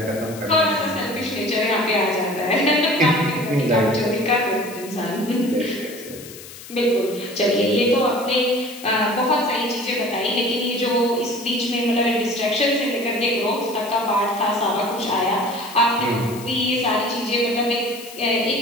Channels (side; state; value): left; noise; hiss, 16 dB below the sound